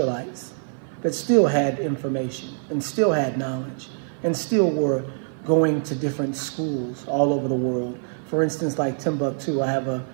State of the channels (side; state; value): left; silent; 56 dB below the other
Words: that still had information and still had knowledge and still were going to different schools all over the world. For instance, like Timbuktu, I have a